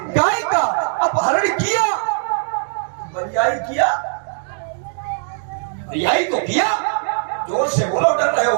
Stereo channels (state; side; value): silent; left; digital silence